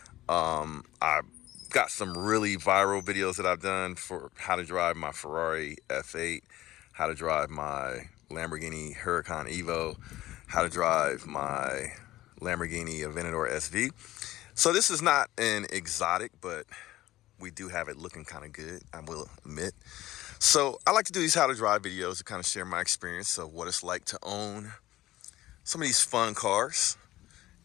I've got some really viral videos that I've done for how to drive my Ferrari F8, how to drive my Lamborghini Huracan Evo, how to drive my Lamborghini Aventador SV. So this is not an exotic, but we do have it looking kind of good, I will admit. So I like to do these how to drive videos to kind of share my experience of what it's like to own some of these fun cars.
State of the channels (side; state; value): right; quieter; 15.8 dB